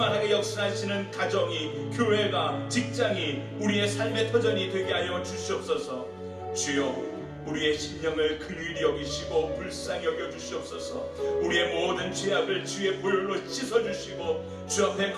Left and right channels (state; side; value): identical; both; correlation 1.00